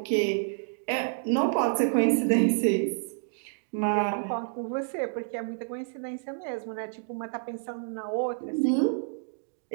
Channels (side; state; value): left; silent; digital silence